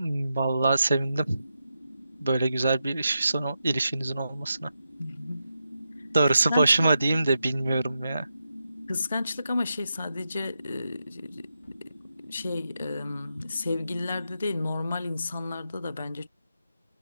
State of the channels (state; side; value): inverted; both; correlation -0.87